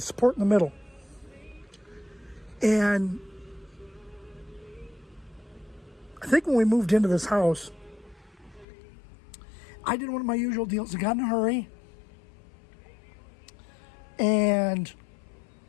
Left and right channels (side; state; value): right; drops out; at 8.7 s